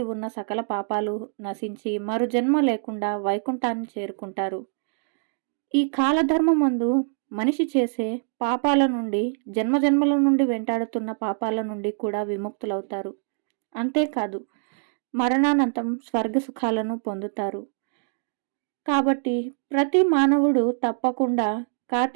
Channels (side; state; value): left; silent; digital silence